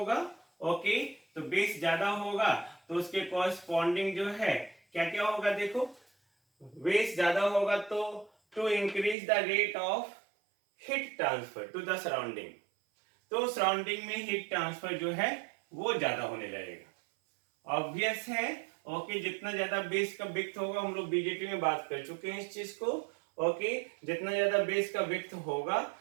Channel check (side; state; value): left; drops out; at 9.2 s